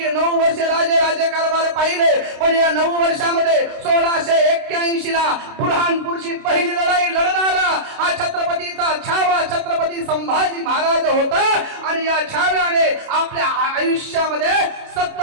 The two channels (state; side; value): late; left; 29 ms